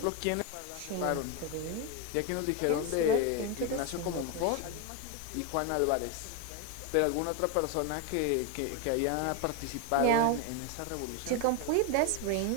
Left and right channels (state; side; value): different; both; correlation 0.02